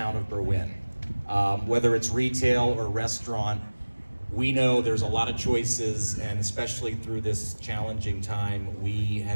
of Berwyn. Whether it's retail or restaurant, we know there's a lot of choices, and especially through this challenging time, we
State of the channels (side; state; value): both; inverted; correlation -1.00